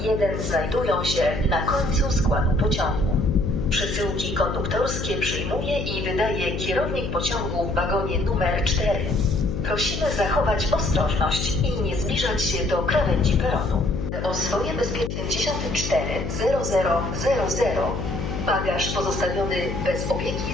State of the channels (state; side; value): noise; left; hum, 4 dB below the sound